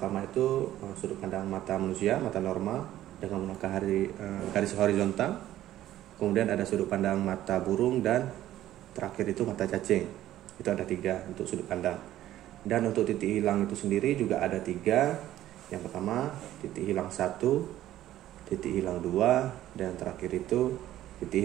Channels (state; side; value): quieter; left; 13.4 dB